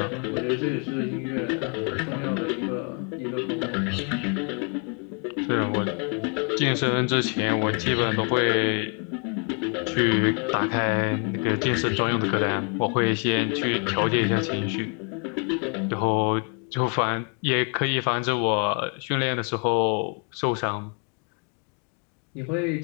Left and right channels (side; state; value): right; quieter; 38.1 dB